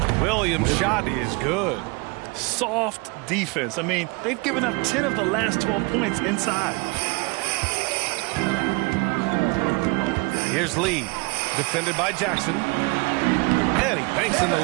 Williams' shot is good. Soft defense. I mean, they've given up 10 of the last 12 points inside. Here's Lee, defended by Jackson. And he banks in the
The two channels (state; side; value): quieter; left; 28.0 dB